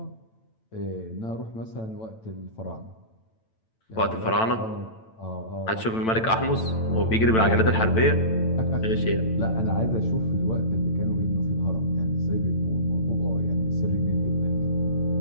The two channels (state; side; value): late; right; 9.0 ms